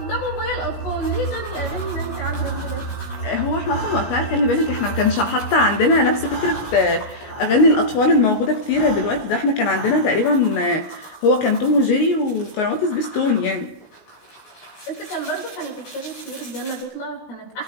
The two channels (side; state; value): right; late; 17 ms